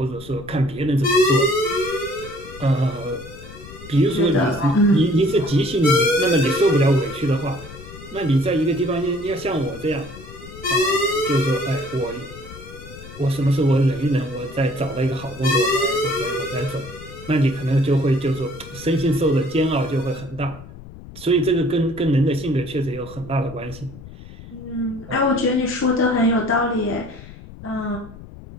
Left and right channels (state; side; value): noise; left; rumble, 16 dB below the sound